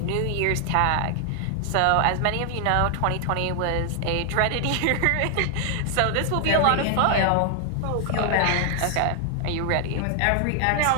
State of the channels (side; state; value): both; different; correlation 0.00